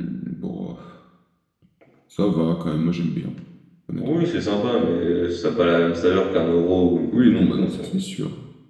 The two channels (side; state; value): both; identical; correlation 1.00